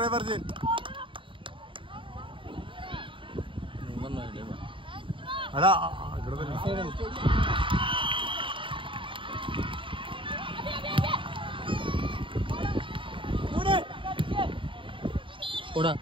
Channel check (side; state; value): left; late; 0.25 ms